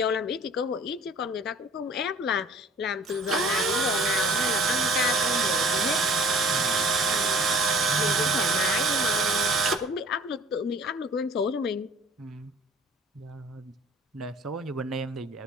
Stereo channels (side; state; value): both; normal; correlation 0.50